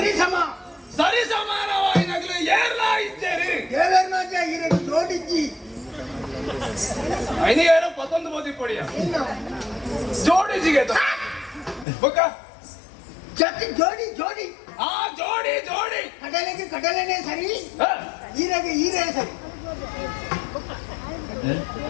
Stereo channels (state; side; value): drops out; right; at 11.9 s